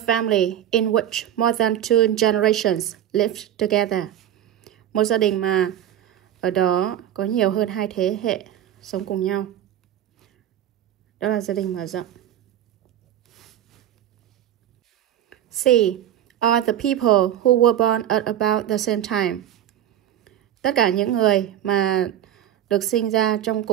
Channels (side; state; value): left; quieter; 11.4 dB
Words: in which more than 2 generations lived together. Một gia đình mà ở đó có nhiều hơn 2 thế hệ sống cùng nhau. Đó là gia đình mở rộng. C. Are the people who were born at about the same time. Tất cả những người mà được sinh ra trong